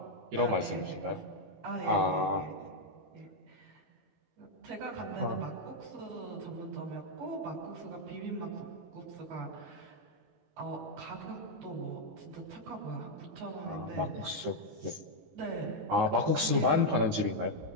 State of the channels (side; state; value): left; late; 18 ms